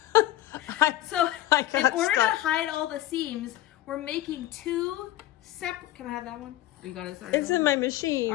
So in order to hide all the seams, we're making 2 separate, can I have that one? You got it? It's in my machine.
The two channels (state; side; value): quieter; right; 14.5 dB